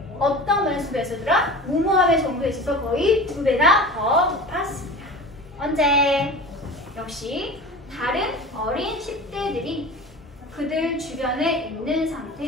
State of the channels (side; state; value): both; normal; correlation 0.35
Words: 어떤 면에서 2배였더라? 무모함의 정도에 있어서 거의 2배나 더 높았습니다. 언제? 역시 다른 어린 10대들이 그들 주변에 있는